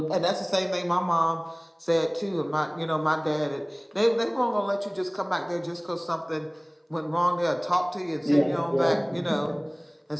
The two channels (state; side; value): identical; both; correlation 1.00